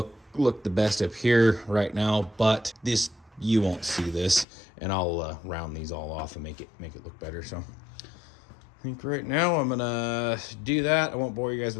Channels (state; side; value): drops out; right; at 4.5 s